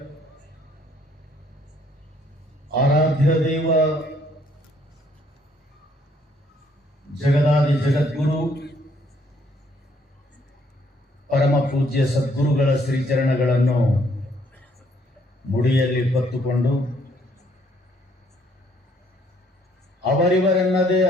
आराध्य देव जगदादि जगद्गुरु परम पूज्य सद्गुरुಗಳ ಶ್ರೀಚರಣಗಳನ್ನು ಮುಡಿಯಲ್ಲಿ ಹೊತ್ತುಕೊಂಡು ಅವರಿವರೆನ್ನದೇ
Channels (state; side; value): normal; both; correlation 0.66